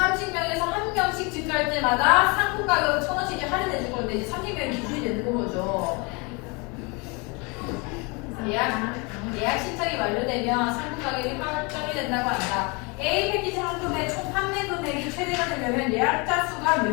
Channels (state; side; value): quieter; right; 29.5 dB